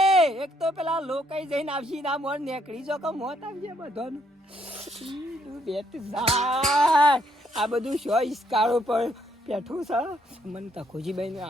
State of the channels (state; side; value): normal; both; correlation 0.71